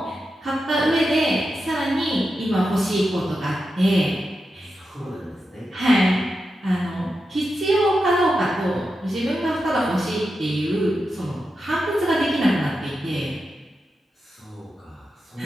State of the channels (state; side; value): normal; both; correlation 0.89